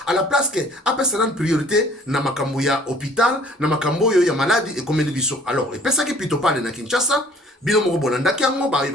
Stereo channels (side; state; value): both; normal; correlation 0.55